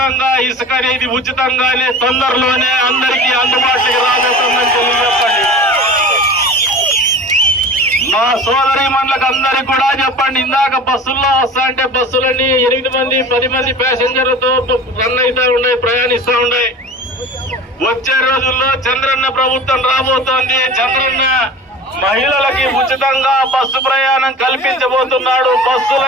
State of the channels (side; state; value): both; normal; correlation 0.37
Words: ఇసుక అనేది ఉచితంగానే తొందరలోనే అందరికీ అందుబాటులోకి రాబోతుందని తెలియజెప్పండి. మా సోదరి మండలకు అందరికి కూడా చెప్పండి, ఇందాక బస్సుల్లో వస్తా అంటే బస్సులన్నీ 8 మంది 10 మంది ప్యాసింజర్లతో రన్ అవుతా ఉన్నాయి, ప్రయాణిస్తూ ఉన్నాయి. వచ్చే రోజుల్లో చంద్రన్న ప్రభుత్వం రాబోతోంది. చంద్రన్న మహిళలకి ఉచితంగా బస్సు ప్రయాణం కల్పించబోతున్నాడు. బస్సులు